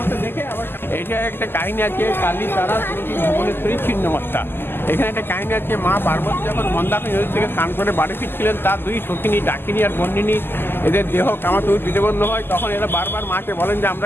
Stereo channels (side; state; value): right; late; 0.10 ms